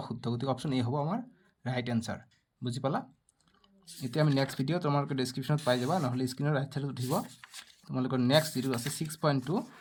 অশুদ্ধ গতিকে অপশন এ হ'ব আমাৰ ৰাইট আনসাৰ বুজি পালা এতিয়া আমি নেক্সট ভিডিও তোমালোকে ডেসক্ৰিপশনত পাই যাবা নহলে স্ক্ৰিনৰ ৰাইট সাইডত উঠিব তোমালোকৰ নেক্সট যিটো আছে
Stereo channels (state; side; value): identical; both; correlation 1.00